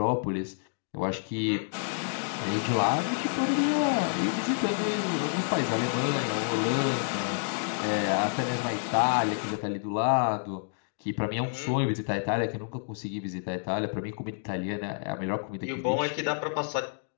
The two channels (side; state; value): right; silent; digital silence